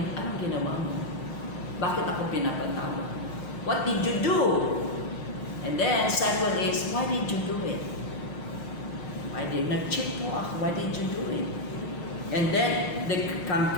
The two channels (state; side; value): late; right; 6.5 ms